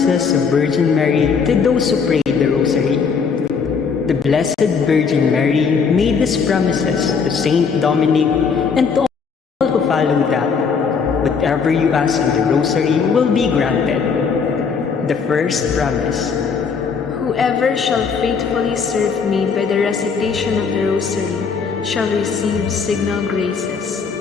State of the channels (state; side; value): quieter; right; 5.7 dB